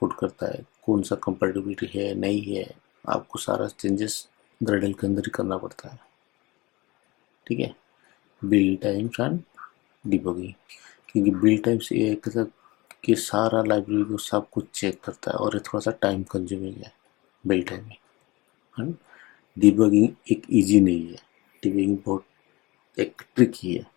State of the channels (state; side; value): quieter; right; 21.8 dB